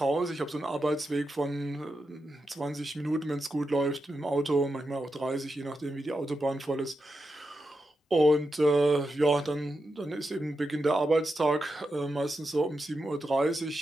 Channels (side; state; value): both; normal; correlation 0.87